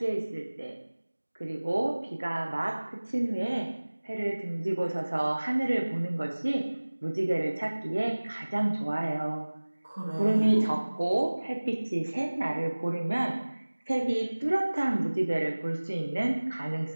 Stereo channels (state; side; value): inverted; both; correlation -1.00